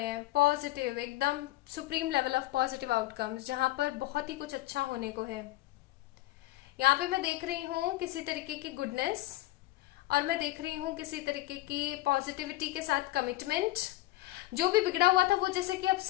हैं, पॉजिटिव एकदम supreme level of positive outcomes, जहां पर बहुत ही कुछ अच्छा होने को है। यहाँ पे मैं देख रही हूँ किसी तरीके की गुडनेस, और मैं देख रही हूँ किसी तरीके की पॉजिटिविटी के साथ कमिटमेंट। जो भी बिगड़ा हुआ था वो जैसे कि अब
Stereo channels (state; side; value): quieter; right; 17.2 dB